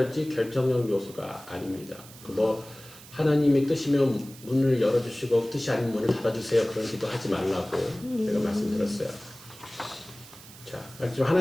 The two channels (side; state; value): right; noise; hiss, 19 dB below the sound